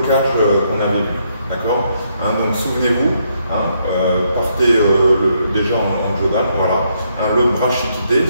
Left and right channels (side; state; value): both; inverted; correlation -0.75